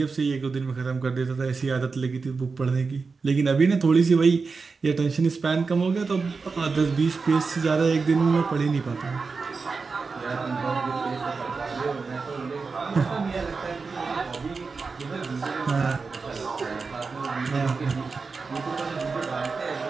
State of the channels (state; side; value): quieter; left; 4.6 dB